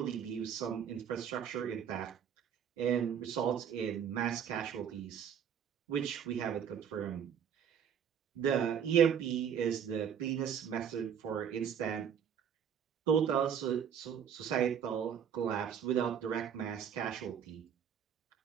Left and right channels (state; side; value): quieter; left; 8.2 dB